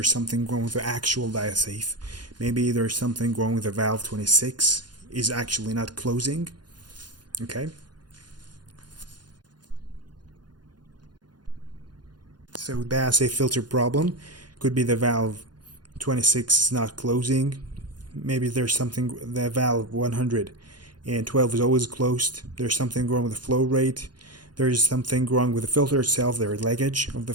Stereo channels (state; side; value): late; left; 0.70 ms